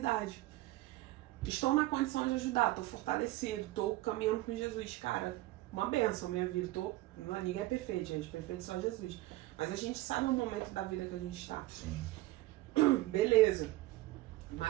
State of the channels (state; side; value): quieter; left; 17.9 dB